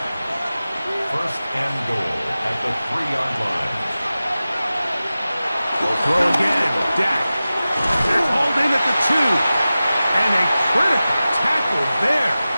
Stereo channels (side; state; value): both; inverted; correlation -0.95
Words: First and goal at the 3-yard line. We'll throw again. Dak. They're hauled in at the 2. And a critical tackle there.